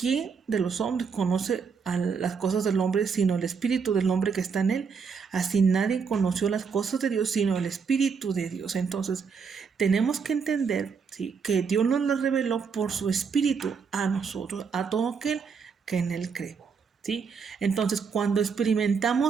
de los hombres conoce a las cosas del hombre sino el espíritu del hombre que está en él? Así nadie conoció las cosas de Dios sino el espíritu de Dios. Entonces, tenemos que entender, ¿sí?, que Dios nos lo reveló por su espíritu a nosotros, a todo aquel que en él cree. ¿Sí? Entonces, cuando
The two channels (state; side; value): quieter; left; 5.8 dB